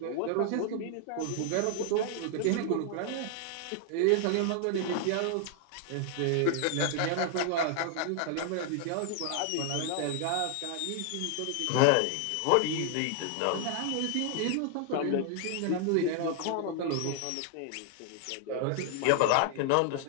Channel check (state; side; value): different; both; correlation 0.00